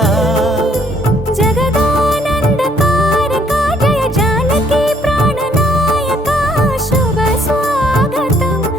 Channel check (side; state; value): both; normal; correlation 0.65